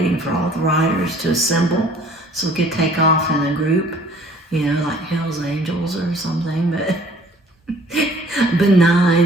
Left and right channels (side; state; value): both; normal; correlation 0.54